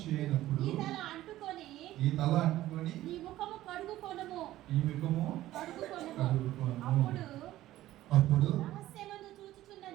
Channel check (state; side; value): quieter; left; 14.9 dB